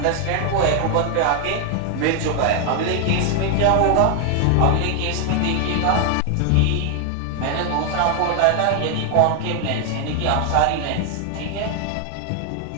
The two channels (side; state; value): both; different; correlation 0.00